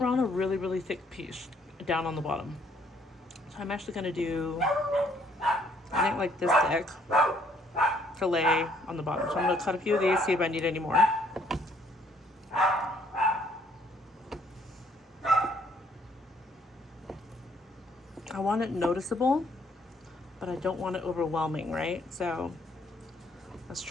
a really, really thick piece down on the bottom. So I'm actually gonna do, I think like this thick to lay on the bottom. So I'm gonna cut a few of these, see if I need any more. I want it noticeable, but I don't want it overwhelming, right? So let's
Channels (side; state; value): both; normal; correlation 0.65